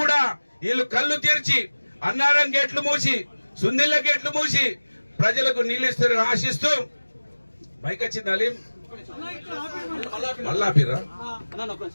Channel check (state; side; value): inverted; both; correlation -1.00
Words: కూడా వీళ్ళు కళ్ళు తెరిచి అన్నారం గేట్లు మూసి, సుందిళ్ళ గేట్లు మూసి ప్రజలకు నీళ్లు ఇస్తారని ఆశిస్తూ బైక్ వచ్చింది. మళ్ళా